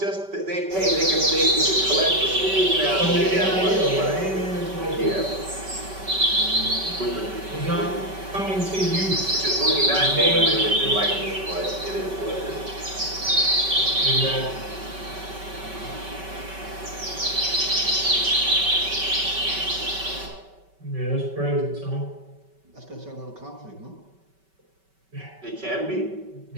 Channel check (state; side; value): late; left; 5.2 ms